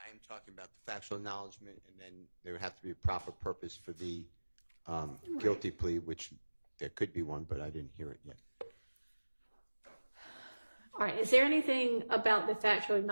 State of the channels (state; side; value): inverted; both; correlation -1.00